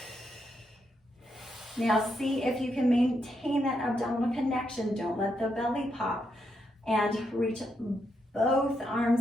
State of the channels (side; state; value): both; normal; correlation 0.81